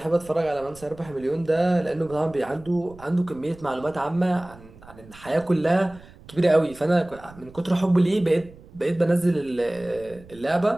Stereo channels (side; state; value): right; noise; rumble, 21 dB below the sound